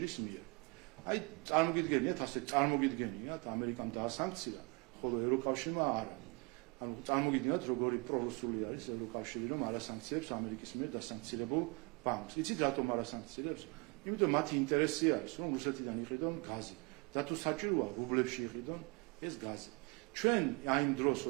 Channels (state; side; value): quieter; left; 29.4 dB